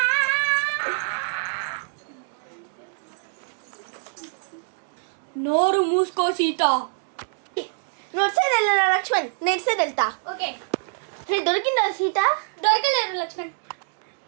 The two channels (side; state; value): left; silent; digital silence